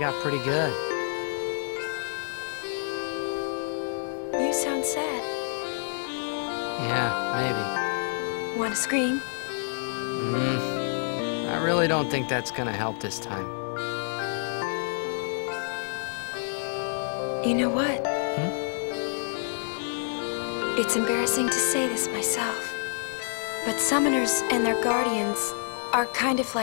pretty good. You sound sad. Yeah, maybe. Want to scream? I really don't think that's gonna help this time. You know what? It's embarrassing to say this myself, but summoners and their guardians are kind of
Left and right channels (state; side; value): silent; right; digital silence